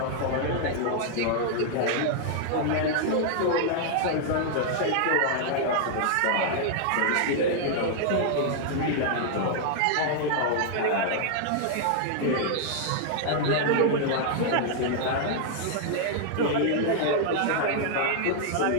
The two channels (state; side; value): different; both; correlation -0.01